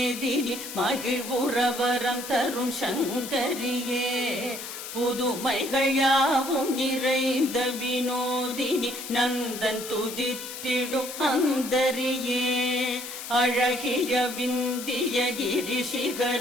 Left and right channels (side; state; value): left; noise; hiss, 9 dB below the sound